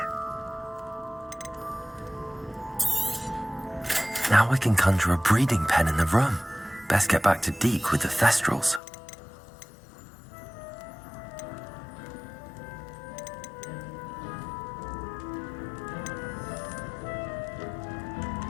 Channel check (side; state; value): right; drops out; at 8.8 s